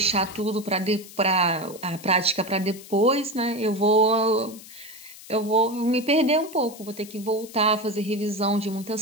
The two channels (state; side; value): noise; left; hiss, 18 dB below the sound